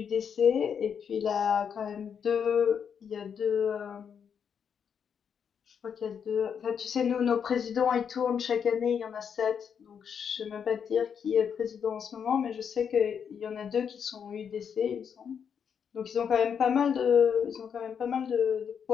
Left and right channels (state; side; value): quieter; right; 7.3 dB